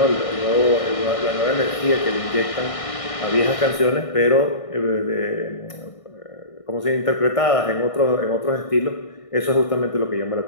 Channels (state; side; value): late; right; 1.6 ms